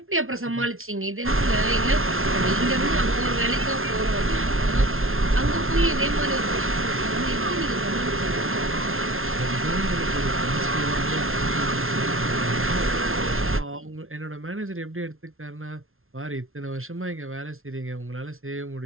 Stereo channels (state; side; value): late; left; 0.61 ms